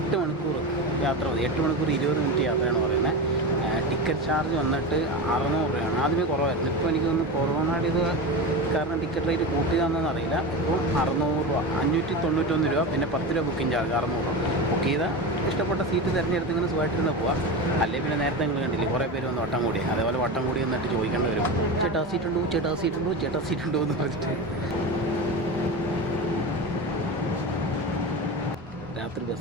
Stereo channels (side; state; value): both; normal; correlation 0.23